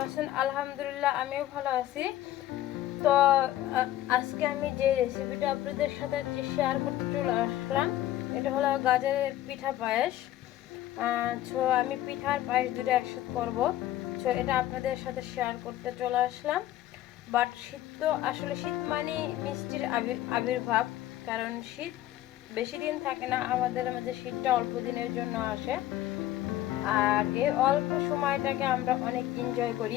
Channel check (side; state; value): right; quieter; 13.8 dB